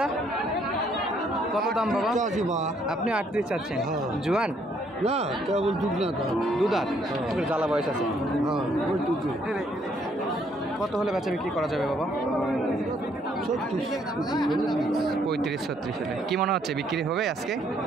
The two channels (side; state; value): both; normal; correlation 0.68